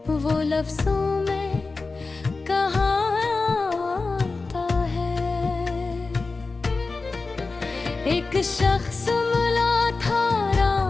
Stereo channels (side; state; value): right; quieter; 3.9 dB